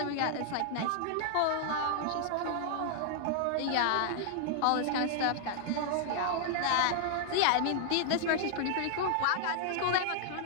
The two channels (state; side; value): different; both; correlation -0.01